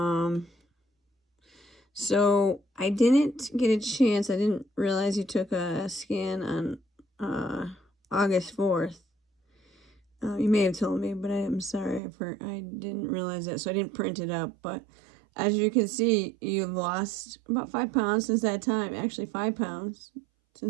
So I didn't get a chance. I didn't realize you took a scan on August 4th. You may have told me, but I'm sorry. I didn't realize that, so I didn't print it up. But as you can see, you've lost about 5 pounds since that time. Actually, 5 pounds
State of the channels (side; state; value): left; drops out; at 12.0 s